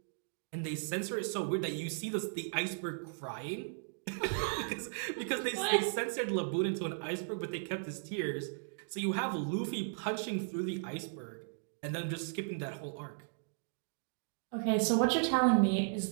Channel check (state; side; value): silent; left; digital silence